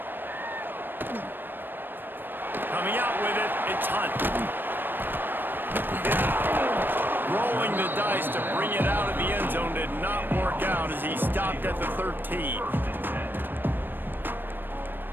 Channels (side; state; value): left; late; 0.095 ms